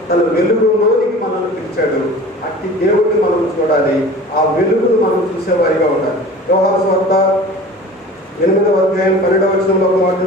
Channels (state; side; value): normal; both; correlation 0.41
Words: తన వెలుగులోనికి మనల్ని పిలిచాడు. అట్టి దేవుడిని మనం చూడాలి, ఆ వెలుగును మనం చూసేవారిగా ఉండాలి. యోహాను సువార్త 8వ అధ్యాయం 12వ వచనంలో ఒక మాట